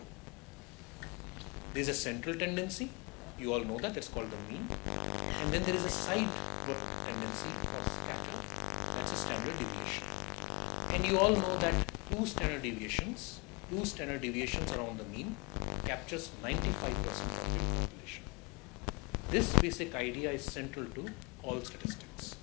There is a central tendency. You all know that, it's called the mean. And then there is a sideward tendency or scatter, that's a standard deviation. And you all know that two standard deviations around the mean captures 95% of the population. This basic idea is central to all statistics.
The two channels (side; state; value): right; quieter; 29.3 dB